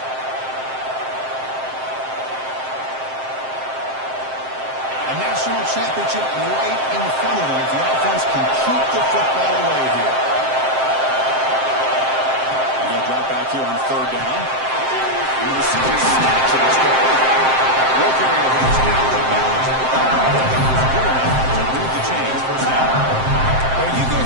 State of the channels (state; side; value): late; left; 7.6 ms